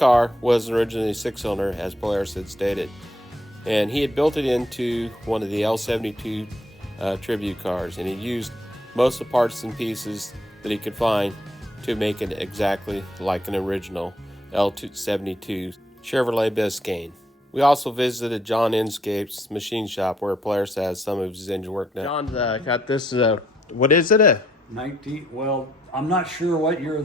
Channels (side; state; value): both; normal; correlation 0.71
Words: was originally 6-cylinder, as Polaris had stated, and he had built it into one of the L72 tribute cars, and he used most of the parts and pieces that he could find to make it exactly like an original L72 Chevrolet Biscane. We also visited John Inscape's machine shop where Polaris has some of his engine work done. John's got this, what is it? 19, well, I'm not sure what year